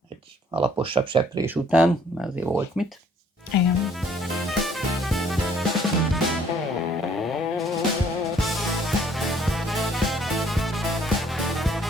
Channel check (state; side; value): normal; both; correlation 0.61